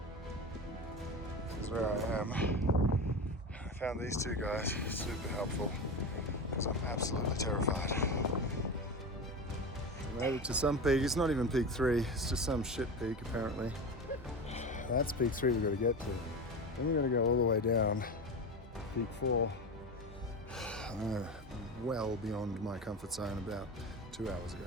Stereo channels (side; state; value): both; normal; correlation 0.25